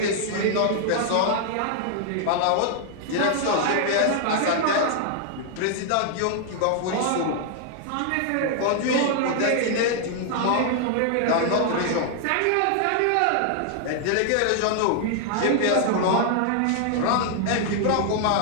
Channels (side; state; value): both; different; correlation 0.00